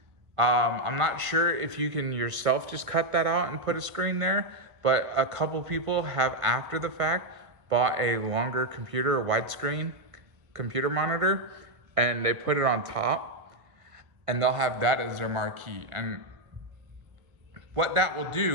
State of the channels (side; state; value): left; late; 1.5 ms